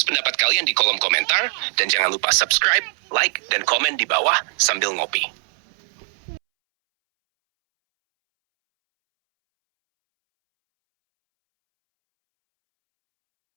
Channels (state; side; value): silent; left; 65 dB below the other